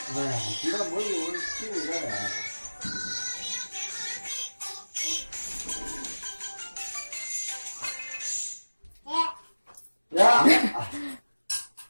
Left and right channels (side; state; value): both; inverted; correlation -1.00